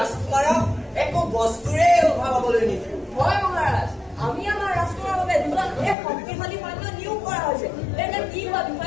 একো বস্তুৰে অভাৱ হবলৈ নিদিওঁ। হয় মহাৰাজ, আমি আমাৰ ৰাষ্ট্ৰৰ বাবে দুজন শক্তিশালী সৈন্য নিয়োগ কৰা হৈছে। এনে কি কোৱা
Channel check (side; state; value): right; drops out; at 6.0 s